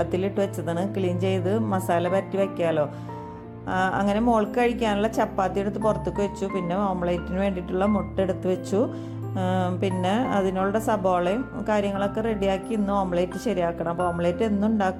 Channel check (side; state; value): both; identical; correlation 1.00